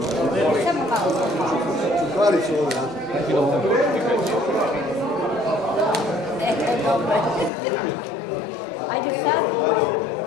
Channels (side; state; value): right; drops out; at 7.5 s